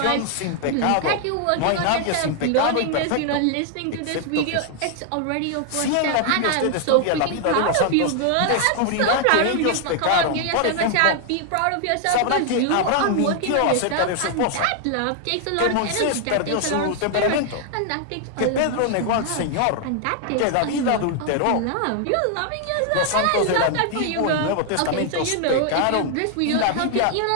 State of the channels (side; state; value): both; different; correlation 0.00